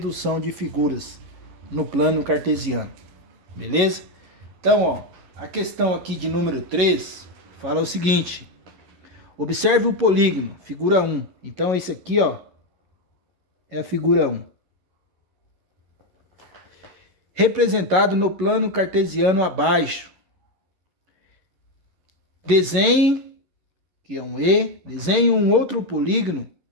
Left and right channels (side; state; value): left; late; 11 ms